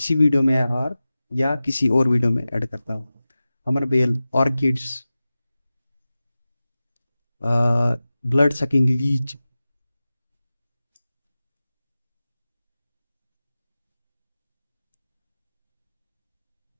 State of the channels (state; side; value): inverted; both; correlation -0.96